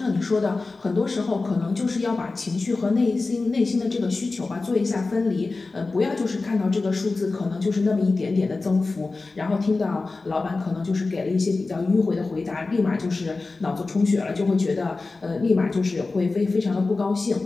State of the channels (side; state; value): right; quieter; 3.6 dB